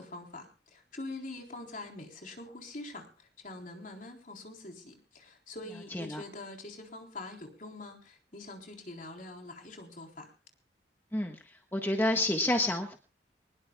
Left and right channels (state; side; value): normal; both; correlation 0.46